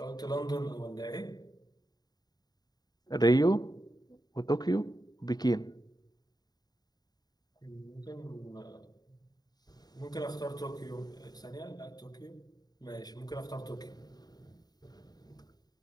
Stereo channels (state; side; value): late; right; 0.19 ms